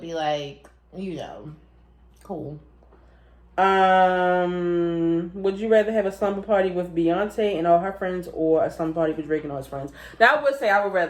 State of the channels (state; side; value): identical; both; correlation 1.00